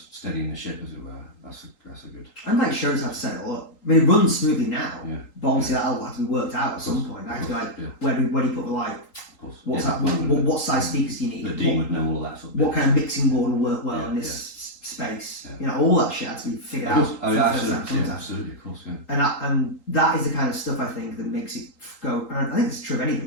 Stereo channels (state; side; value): late; right; 3.8 ms